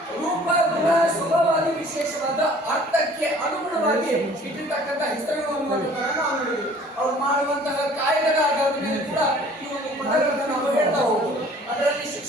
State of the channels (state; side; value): normal; both; correlation 0.51